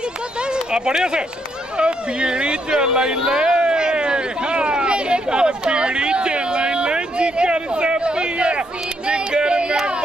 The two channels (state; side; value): normal; both; correlation 0.76